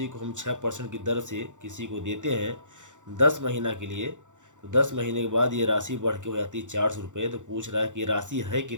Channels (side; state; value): left; late; 0.86 ms